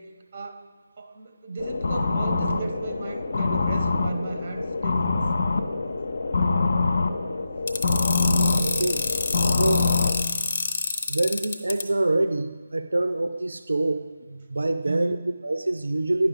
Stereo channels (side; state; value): both; inverted; correlation -0.89